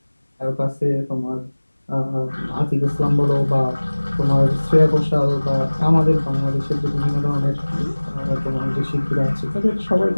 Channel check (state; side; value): inverted; both; correlation -1.00